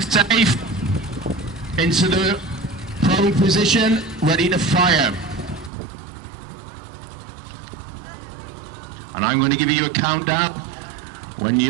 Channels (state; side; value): drops out; left; at 5.7 s